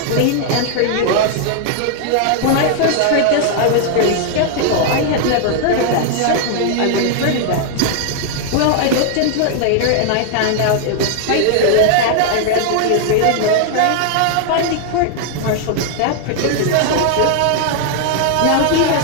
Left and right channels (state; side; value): different; both; correlation 0.00